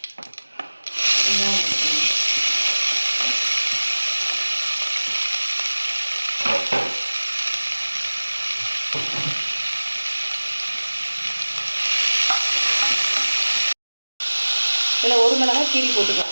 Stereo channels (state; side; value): inverted; both; correlation -1.00